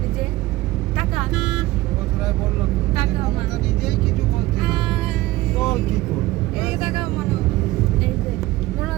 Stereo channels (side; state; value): left; quieter; 18.0 dB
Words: এই যে টাকা